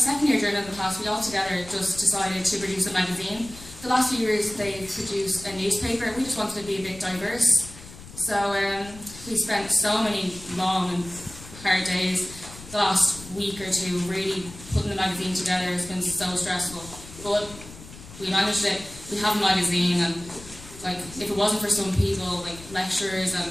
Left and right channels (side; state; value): left; noise; rumble, 17 dB below the sound